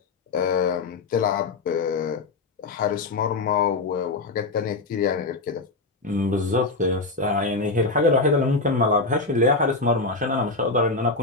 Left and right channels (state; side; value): quieter; right; 3.6 dB